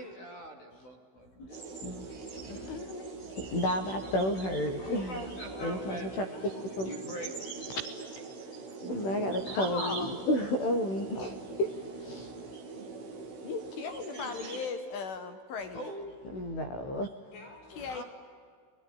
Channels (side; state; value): right; late; 16 ms